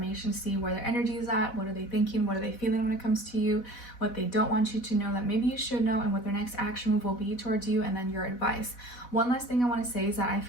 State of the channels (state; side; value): late; right; 4.1 ms